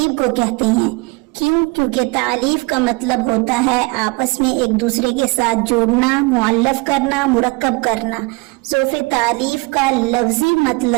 کو کہتے ہیں۔ کیوں؟ کیونکہ تعلیف کا مطلب ہوتا ہے آپس میں ایک دوسرے کے ساتھ جوڑنا، معلف کرنا، مرکب کرنا۔ ظوف تعلیف کا لفظی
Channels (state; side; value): quieter; left; 26.8 dB